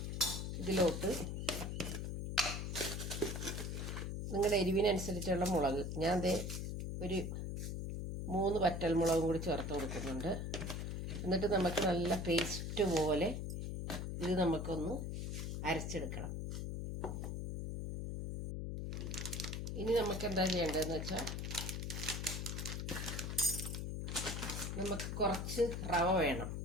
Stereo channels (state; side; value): noise; left; hum, 3 dB below the sound